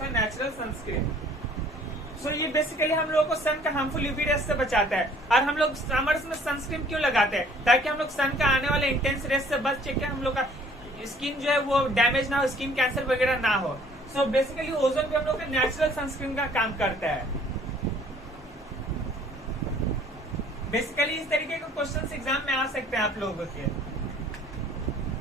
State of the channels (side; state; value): both; normal; correlation 0.56